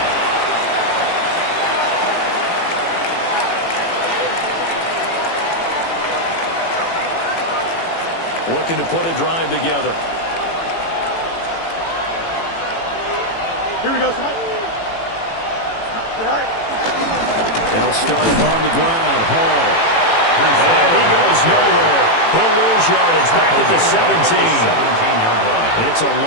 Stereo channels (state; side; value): late; right; 18 ms